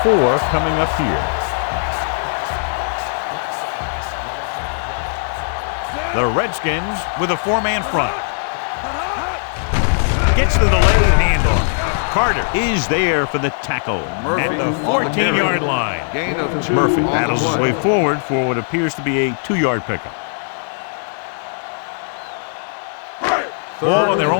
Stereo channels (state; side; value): silent; right; 67 dB below the other